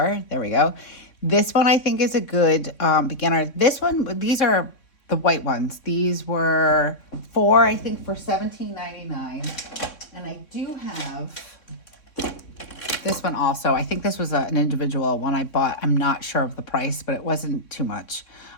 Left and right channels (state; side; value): late; right; 3.6 ms